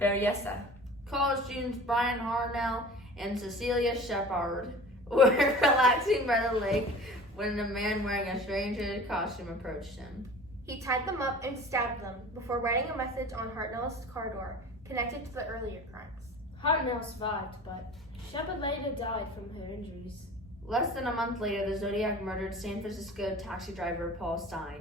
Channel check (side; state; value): both; normal; correlation 0.41